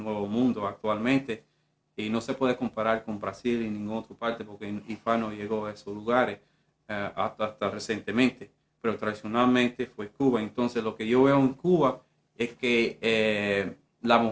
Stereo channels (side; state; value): both; identical; correlation 1.00